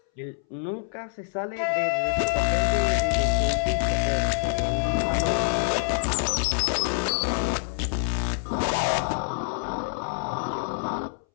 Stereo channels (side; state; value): right; silent; 61 dB below the other